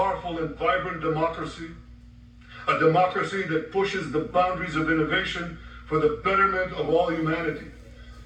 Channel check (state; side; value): identical; both; correlation 1.00